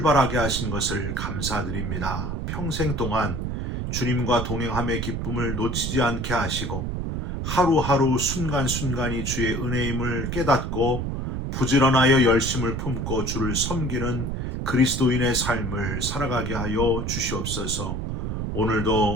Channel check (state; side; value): noise; right; rumble, 3 dB below the sound